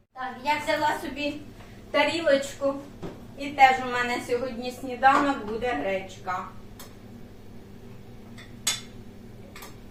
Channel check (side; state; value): both; identical; correlation 1.00